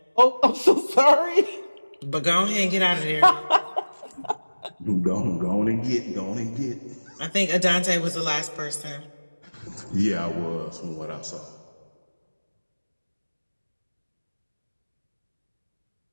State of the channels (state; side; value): inverted; both; correlation -1.00